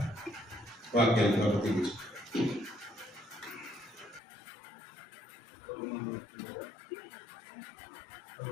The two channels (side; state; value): right; drops out; at 4.2 s